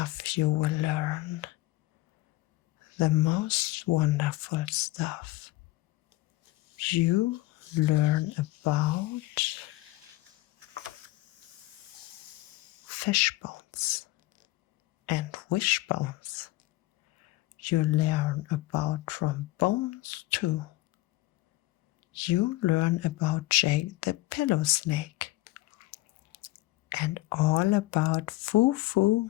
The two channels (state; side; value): quieter; right; 18.7 dB